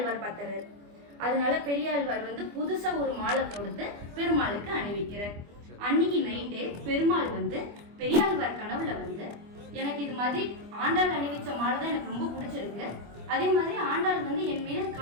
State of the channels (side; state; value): left; late; 25 ms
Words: பார்த்துறாரு. அதனால பெரியாழ்வார் புதுசா ஒரு மாலை தொடுத்து பெருமாளுக்கு அணிவிக்கிறார். அன்னைக்கு நைட்டு பெருமாள் பெரியாழ்வார் கனவுல எனக்கு இது மாதிரி ஆண்டாள் அணிவிச்ச மாலை தான் எனக்கு ரொம்ப பிடிச்சிருக்கு, அதே மாதிரி ஆண்டாள் என் மீது